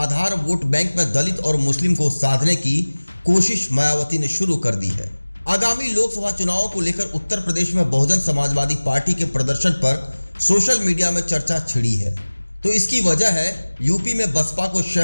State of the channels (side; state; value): both; inverted; correlation -1.00